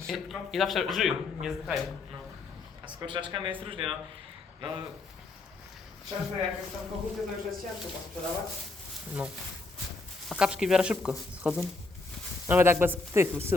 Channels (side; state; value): right; quieter; 3.6 dB